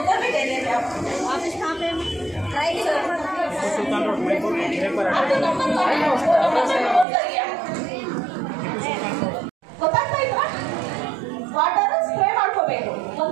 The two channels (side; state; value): left; drops out; at 7.1 s